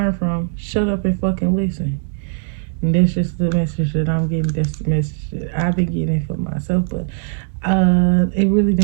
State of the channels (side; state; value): left; silent; digital silence